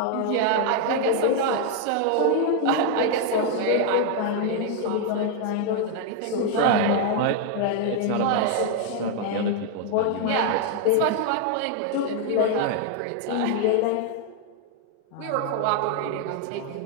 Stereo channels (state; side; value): different; both; correlation 0.00